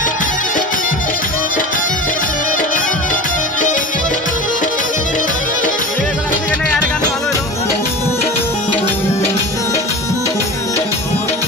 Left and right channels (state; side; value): normal; both; correlation 0.33